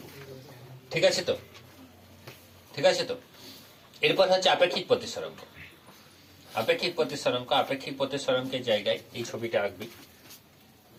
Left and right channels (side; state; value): both; identical; correlation 1.00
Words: ঠিক আছে তো, ঠিক আছে তো। এরপর হচ্ছে আপেক্ষিক প্রতিসরাঙ্ক। আপেক্ষিক প্রতিসরাঙ্ক, আপেক্ষিক প্রতিসরাঙ্কের জায়গায় এই ছবিটা আঁকবি।